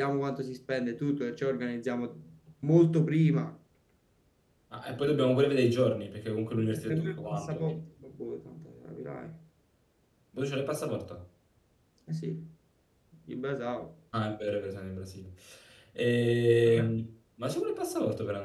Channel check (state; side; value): identical; both; correlation 1.00